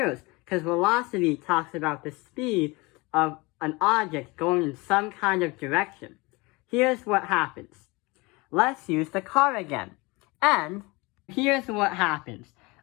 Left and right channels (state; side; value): quieter; right; 24.9 dB